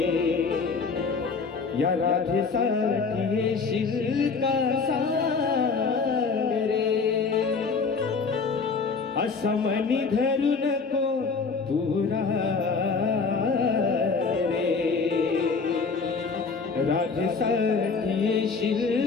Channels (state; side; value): quieter; right; 4.8 dB